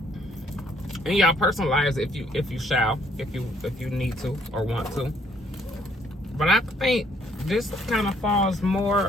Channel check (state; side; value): normal; both; correlation 0.65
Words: In y'all personal lives, if you need to or want to. But I think this kind of falls